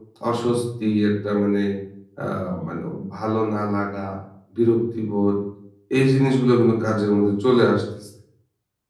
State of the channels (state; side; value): identical; both; correlation 1.00